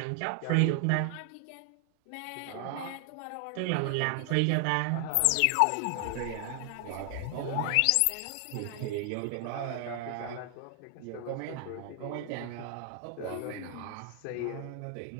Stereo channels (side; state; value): both; different; correlation 0.00